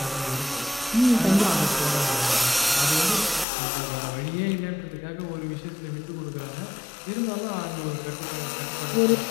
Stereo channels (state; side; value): drops out; right; at 3.5 s